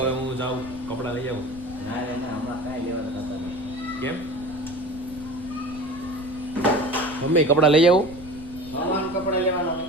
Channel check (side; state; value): left; noise; rumble, 18 dB below the sound